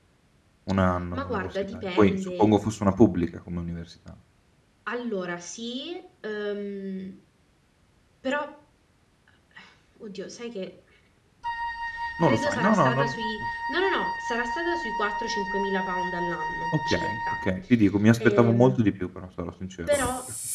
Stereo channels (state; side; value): identical; both; correlation 1.00